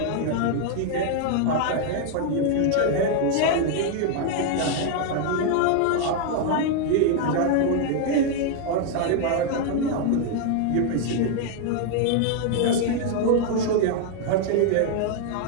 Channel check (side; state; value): both; different; correlation 0.00